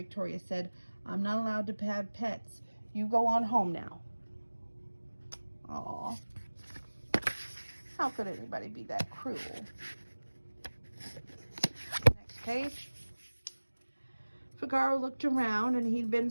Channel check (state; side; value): inverted; both; correlation -1.00